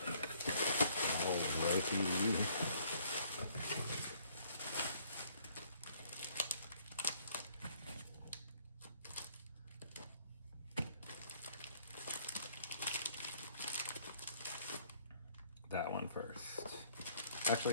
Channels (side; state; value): both; inverted; correlation -0.62